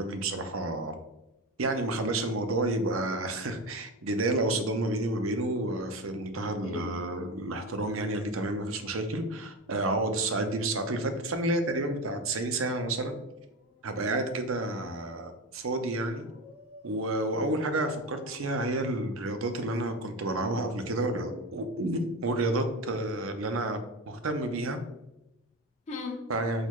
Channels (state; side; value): normal; both; correlation 0.23